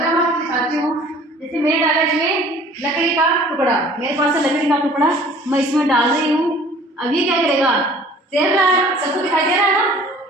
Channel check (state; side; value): normal; both; correlation 0.50